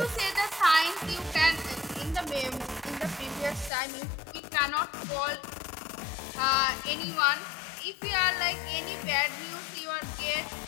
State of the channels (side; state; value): right; drops out; at 3.7 s